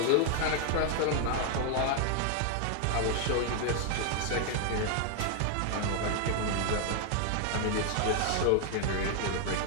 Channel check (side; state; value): both; different; correlation 0.00